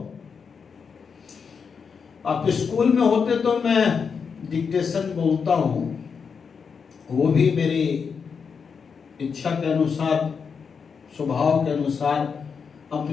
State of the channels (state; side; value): quieter; right; 6.0 dB